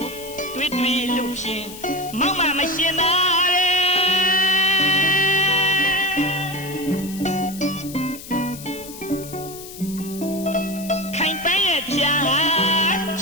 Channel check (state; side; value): noise; left; hiss, 14 dB below the sound